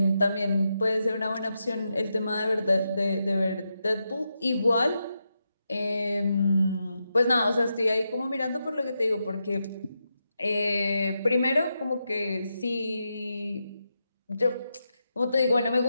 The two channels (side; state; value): both; inverted; correlation -0.86